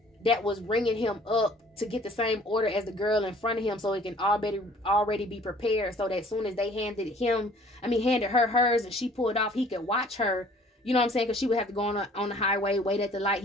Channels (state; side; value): normal; both; correlation 0.54